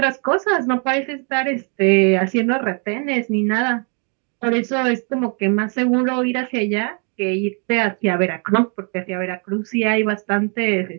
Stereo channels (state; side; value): quieter; left; 38.6 dB